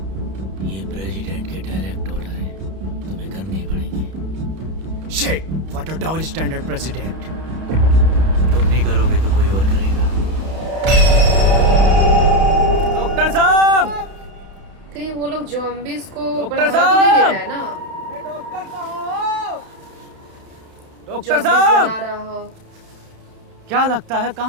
ये प्रेसिडेंट के डायरेक्ट ऑर्डर है, तुम्हें करने ही पड़ेंगे। Shit, what a double standard president. तुम नहीं करोगे तो कोई और करेगा। डॉक्टर साहब, कहीं वो लोग ज़ॉम्बीज़ को डॉक्टर बढ़ावा तो नहीं दे साहब! रहा है ना? डॉक्टर साहब, डॉक्टर ज़ॉम्बीज़ साहब, बना रहा हो। क्या लगता है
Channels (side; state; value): left; late; 31 ms